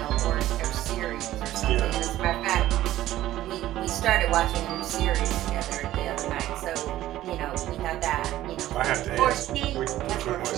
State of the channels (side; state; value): left; quieter; 14.2 dB